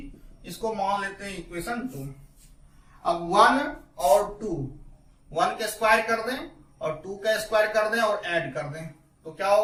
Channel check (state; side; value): identical; both; correlation 1.00